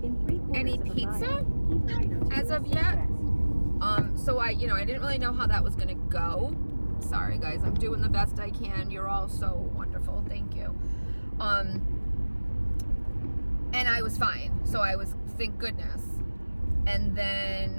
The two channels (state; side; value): inverted; both; correlation -1.00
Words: any pizza as of yet. So I didn't really know how that was gonna go. Sorry guys, I'm doing the best I can. You're all so wonderful, thank you. And I was fine, so I was, thank goodness. And